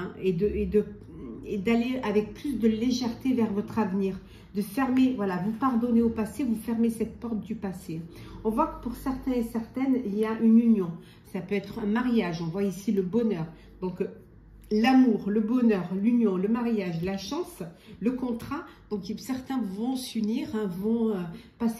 et d'aller avec plus de légèreté vers votre avenir. De fermer, voilà, vous pardonnez au passé, vous fermez cette porte du passé. On voit que pour certains et certaines, il y a une union. Ça peut être un mariage, on voit ici le bonheur. Donc, l'amour, le bonheur, l'union, le mariage, la chance, le contrat. Donc, certains vont s'unir, hein, vont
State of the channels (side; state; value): both; identical; correlation 1.00